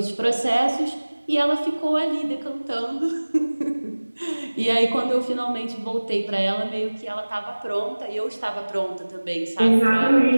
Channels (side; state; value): both; inverted; correlation -1.00